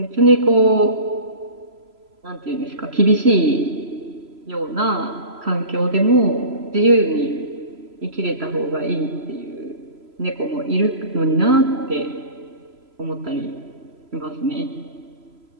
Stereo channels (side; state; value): left; late; 3.0 ms